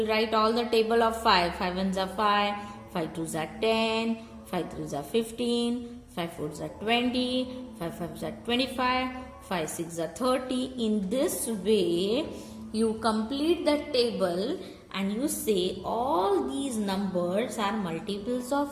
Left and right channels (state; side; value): identical; both; correlation 1.00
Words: write all the table of 5. 5 ones are 5, 5 twos are 10, 5 threes are 15, 5 fours are 20, 5 fives are 25, 5 6 are 30. In this way, you complete the table and you say all these numbers are multiples